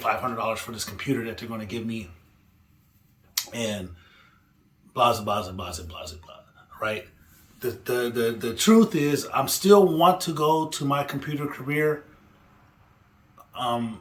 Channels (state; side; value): identical; both; correlation 1.00